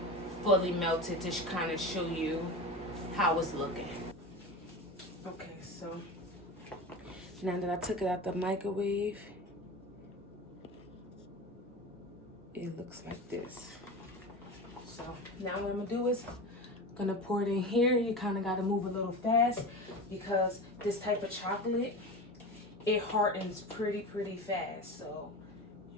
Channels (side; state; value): both; normal; correlation 0.28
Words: fully melted to kind of show you how it's looking. Okay, so now that I took it out the microwave, it looks like this. So now what I'm gonna do is gonna pour it in here. You kind of got to move a little fast because this type of chocolate, it hardens pretty fast. So